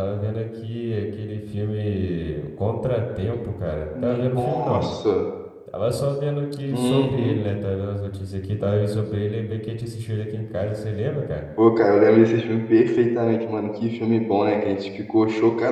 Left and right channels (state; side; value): identical; both; correlation 1.00